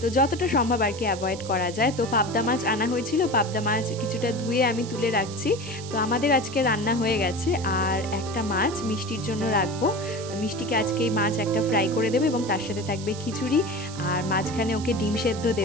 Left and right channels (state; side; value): noise; right; hiss, 14 dB below the sound